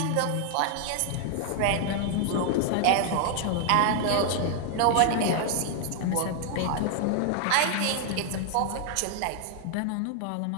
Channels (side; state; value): both; different; correlation 0.00